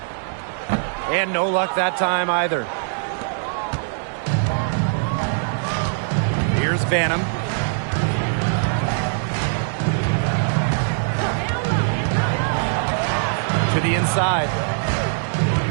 And no luck that time either. Here's Banham. To the inside.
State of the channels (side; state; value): left; silent; 64 dB below the other